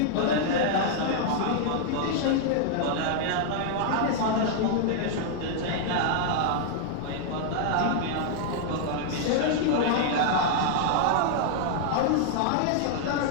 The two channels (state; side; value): different; both; correlation -0.01